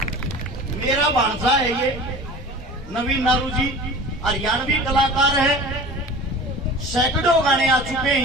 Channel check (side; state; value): both; normal; correlation 0.39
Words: मेरा भांजा है ये नवीन नारू जी, हरियाणवी कलाकार है, सैकड़ों गाने आ चुके हैं